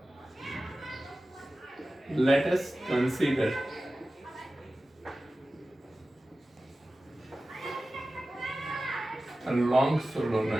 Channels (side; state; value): both; normal; correlation 0.95